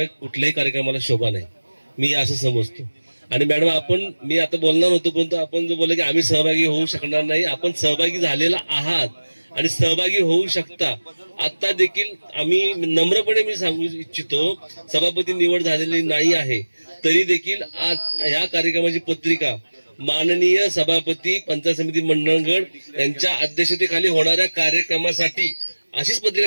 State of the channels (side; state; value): both; inverted; correlation -1.00